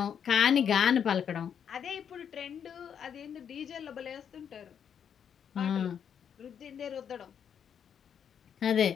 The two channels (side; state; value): right; quieter; 8.0 dB